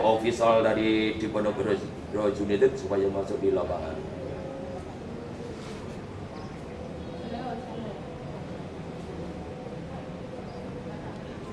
official dari Diponegoro United supaya masuk di lapangan.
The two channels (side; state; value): both; identical; correlation 1.00